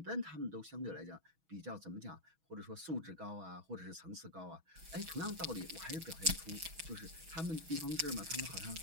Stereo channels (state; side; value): late; left; 6.2 ms